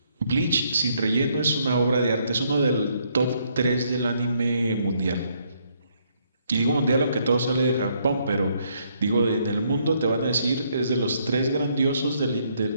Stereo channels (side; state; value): both; inverted; correlation -0.71